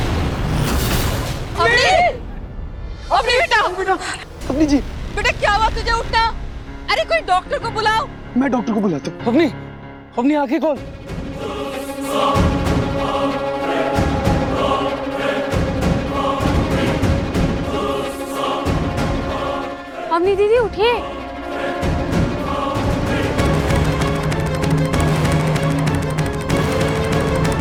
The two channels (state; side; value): identical; both; correlation 1.00